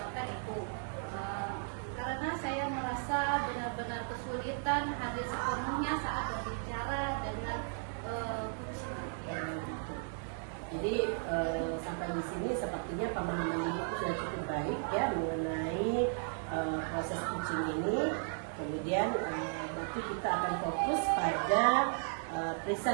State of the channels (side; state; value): left; silent; 54 dB below the other